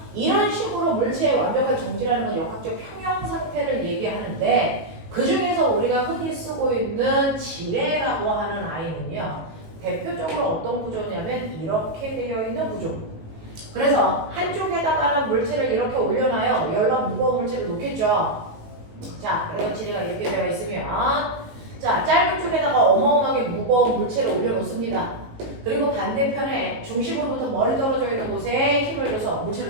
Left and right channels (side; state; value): left; late; 18 ms